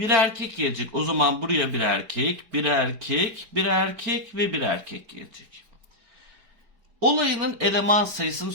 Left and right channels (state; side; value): late; left; 4.8 ms